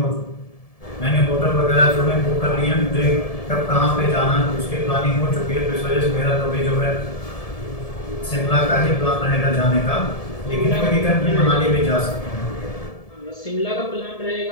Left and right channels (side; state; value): right; late; 1.7 ms